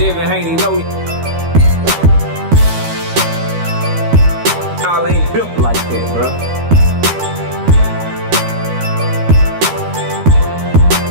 Haney know y'all ain't built like that, bro.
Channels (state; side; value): late; left; 13 ms